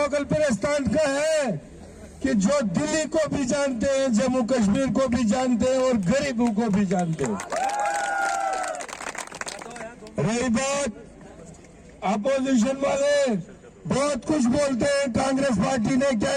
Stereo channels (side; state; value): both; identical; correlation 1.00